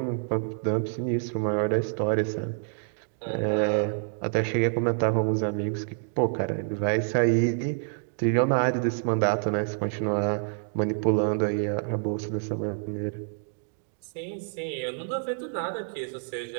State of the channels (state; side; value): silent; left; digital silence